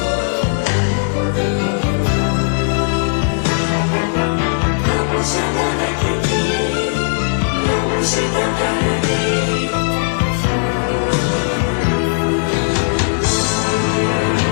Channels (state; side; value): silent; right; digital silence